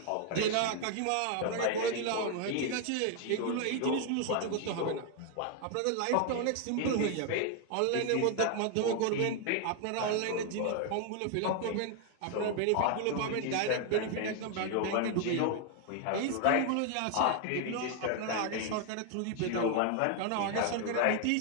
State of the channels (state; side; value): different; both; correlation 0.00